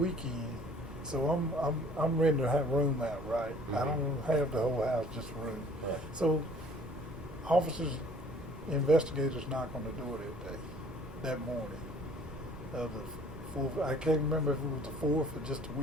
so I'm renting a room out, right? Mm-hmm. I don't have the whole house, just a room. Right. So officers, investigators knock on the door that morning of the 4th. I can't remember if it was the 4th or just the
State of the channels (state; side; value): normal; both; correlation 0.54